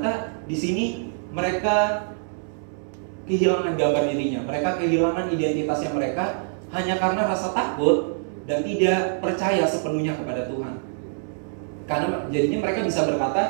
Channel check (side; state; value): left; silent; digital silence